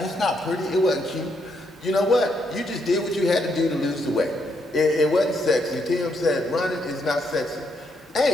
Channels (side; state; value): both; normal; correlation 0.76